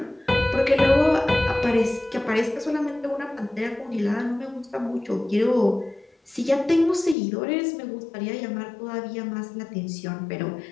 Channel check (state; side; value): drops out; right; at 7.2 s